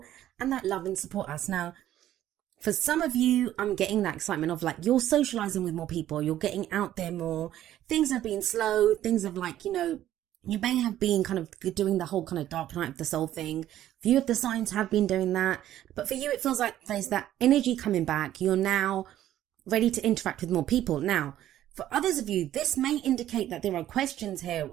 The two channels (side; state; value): left; quieter; 12.6 dB